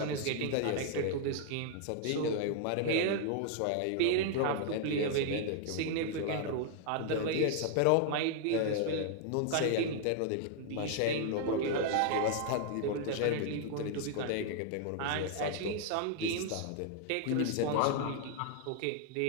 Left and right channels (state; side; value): different; both; correlation 0.00